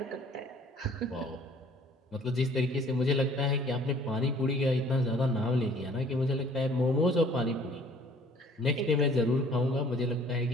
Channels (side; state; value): both; normal; correlation 0.55